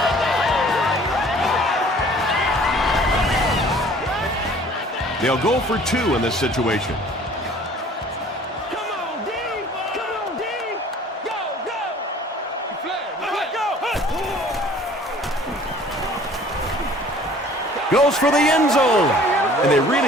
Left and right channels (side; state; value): both; normal; correlation 0.52